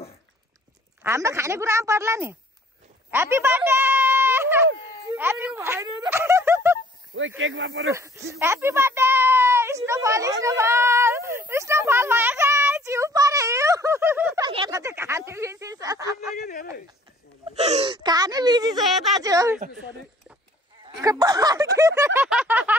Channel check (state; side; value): normal; both; correlation 0.56